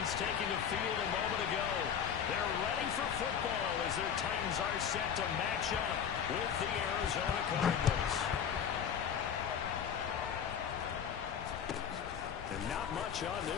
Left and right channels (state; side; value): quieter; right; 8.0 dB